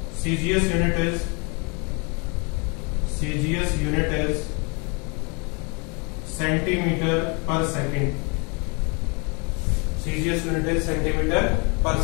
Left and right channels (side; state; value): right; quieter; 32.6 dB